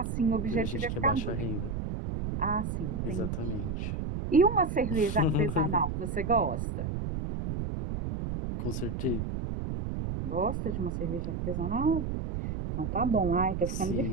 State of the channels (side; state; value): right; noise; rumble, 3 dB below the sound